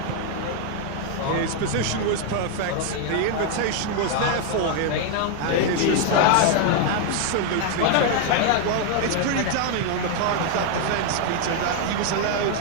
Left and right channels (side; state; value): both; different; correlation 0.01